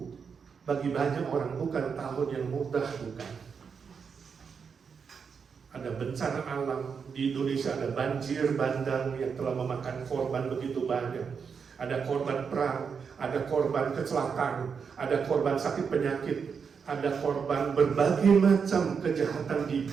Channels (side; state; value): left; quieter; 6.1 dB